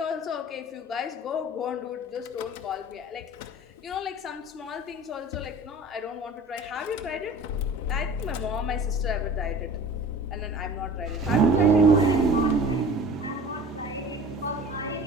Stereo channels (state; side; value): normal; both; correlation 0.42